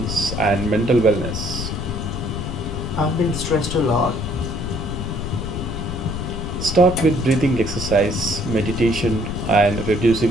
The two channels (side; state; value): left; noise; rumble, 5 dB below the sound